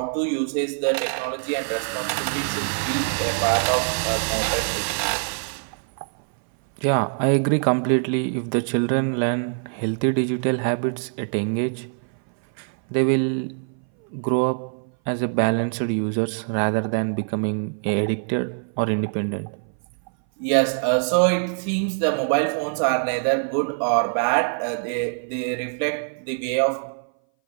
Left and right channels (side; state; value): left; silent; 59 dB below the other